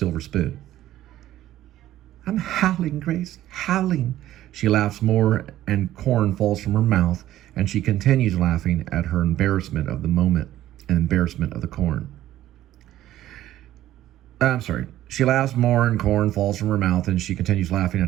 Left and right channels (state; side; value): quieter; left; 13.6 dB